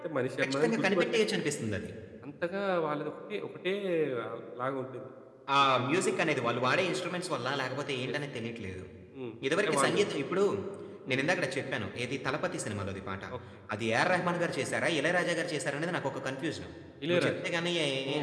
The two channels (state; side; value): identical; both; correlation 1.00